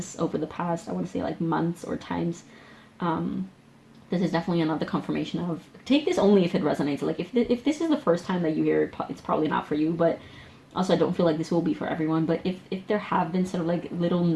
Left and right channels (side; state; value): both; identical; correlation 1.00